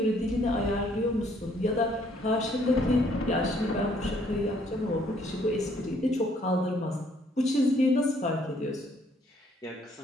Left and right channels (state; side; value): normal; both; correlation 0.65